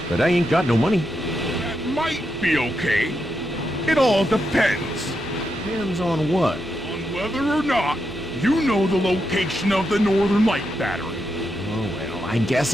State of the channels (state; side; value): normal; both; correlation 0.84